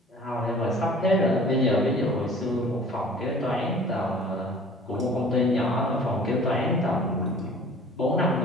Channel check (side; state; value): both; normal; correlation 0.47